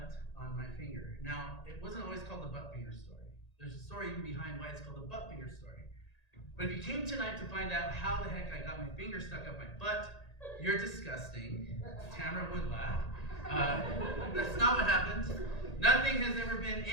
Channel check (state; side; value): late; right; 1.8 ms